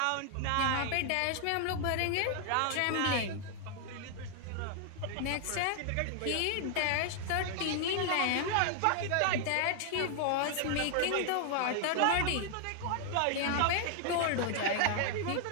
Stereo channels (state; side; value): different; both; correlation 0.00